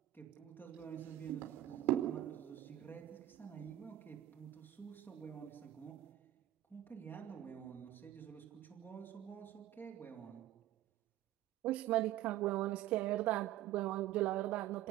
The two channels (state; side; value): quieter; left; 13.8 dB